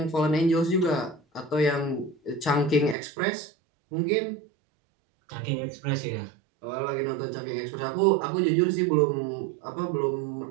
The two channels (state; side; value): drops out; left; at 3.0 s